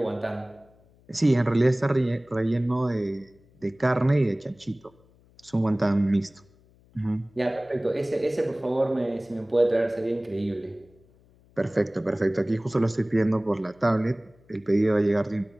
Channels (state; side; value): noise; left; hum, 30 dB below the sound